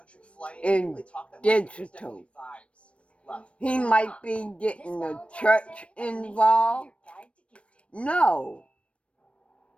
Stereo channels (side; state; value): right; late; 0.061 ms